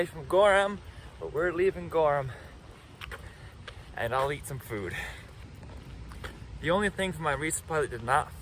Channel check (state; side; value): identical; both; correlation 1.00